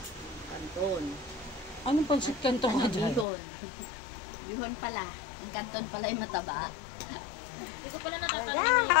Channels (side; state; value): right; drops out; at 3.2 s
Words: Kanton. Anong pansit kanto ka dyan? Bihon. Bihon pala. Ang kanton pala yung mataba. Hindi ko pala natatanong.